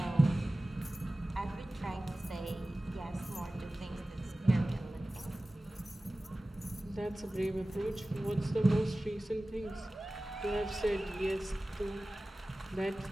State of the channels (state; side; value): normal; both; correlation 0.97